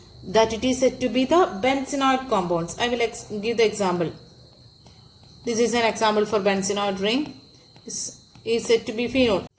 That it is said to be the benzenoid compounds. I will give the example. This is an example for benzenoid ring. This is said to be phenol.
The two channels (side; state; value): both; identical; correlation 1.00